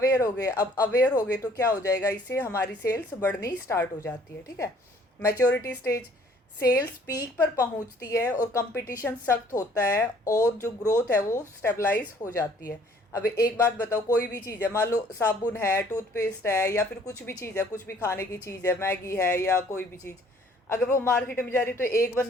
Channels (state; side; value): normal; both; correlation 0.58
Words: हो गए। अब अवेयर हो गए तो क्या हो जाएगा, इससे हमारी सेल्स बढ़नी स्टार्ट हो जाती है, ठीक है। मैच्योरिटी स्टेज, सेल्स पीक पर पहुंचती है और कंपटीशन सख्त होता है और जो ग्रोथ है वो स्टेबलाइज हो जाती है। अब एक बात बताओ, कोई भी चीज़ है, मान लो साबुन है, टूथपेस्ट है, या फिर कुछ भी चीज़ है, कुछ भी खाने की चीज़ है, मैगी है या कोई भी चीज़, अगर वो मार्केट में जा रही है तो एक